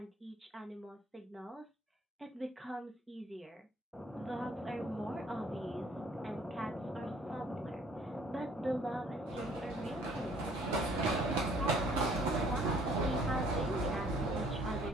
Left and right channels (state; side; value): normal; both; correlation 0.59